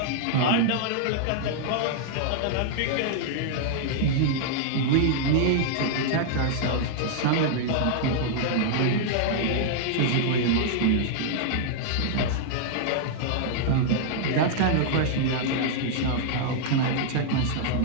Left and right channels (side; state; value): both; different; correlation -0.01